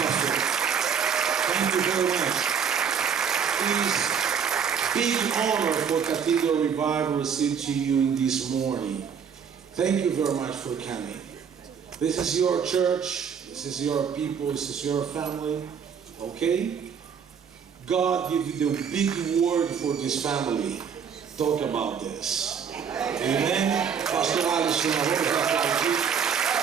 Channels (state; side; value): quieter; left; 7.0 dB